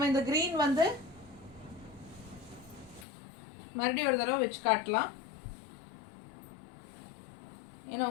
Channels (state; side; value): drops out; right; at 3.1 s